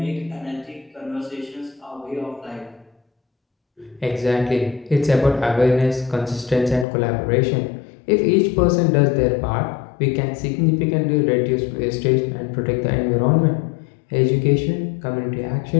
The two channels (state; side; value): drops out; right; at 6.9 s